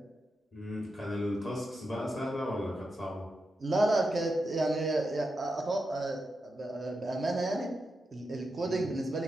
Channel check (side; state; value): both; normal; correlation 0.87